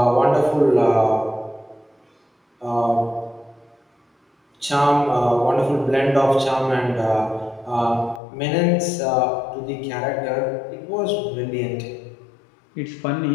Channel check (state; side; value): drops out; right; at 8.2 s